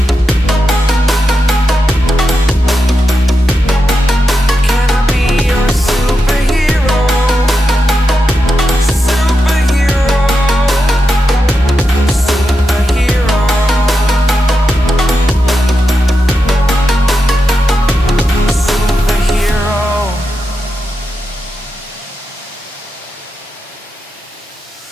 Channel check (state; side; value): normal; both; correlation 0.87